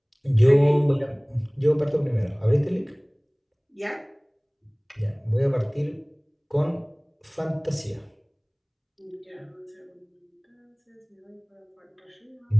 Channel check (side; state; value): both; identical; correlation 1.00